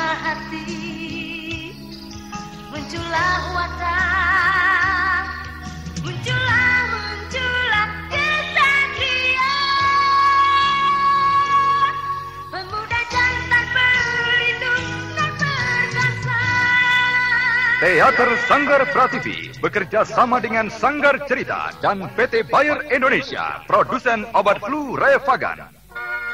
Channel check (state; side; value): identical; both; correlation 1.00